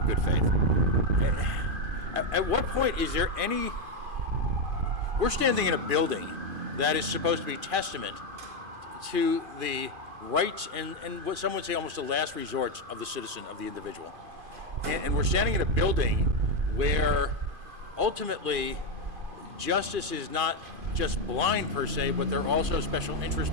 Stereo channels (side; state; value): left; late; 2.5 ms